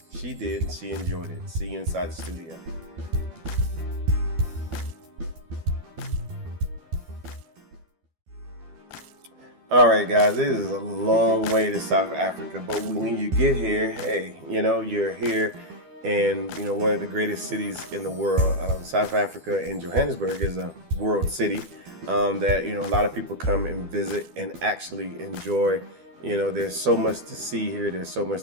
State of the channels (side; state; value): left; late; 12 ms